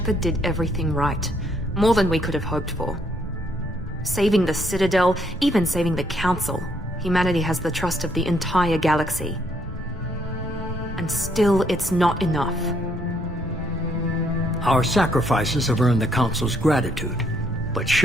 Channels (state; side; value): normal; both; correlation 0.70